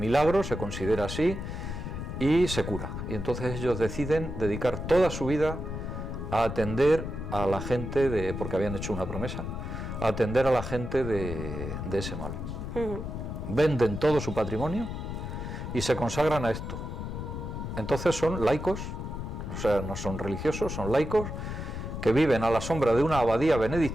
se considera así, y se cura. Y entonces ellos deciden dedicar toda su vida a atender a la gente, porque habían hecho una promesa, a atender a la gente de ese mal. Venden todo su patrimonio y se consagran a esto. Entonces son laicos, o sea, no son religiosos, son laicos, que viven a la sombra de una abadía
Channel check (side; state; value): left; noise; rumble, 6 dB below the sound